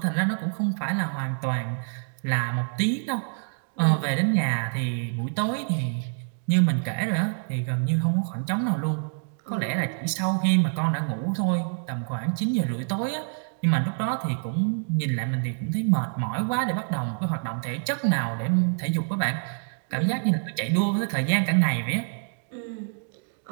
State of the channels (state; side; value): silent; left; 61 dB below the other